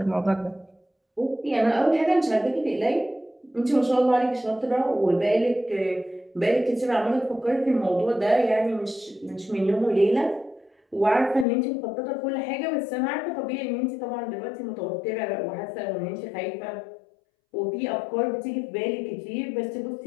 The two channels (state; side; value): drops out; right; at 11.5 s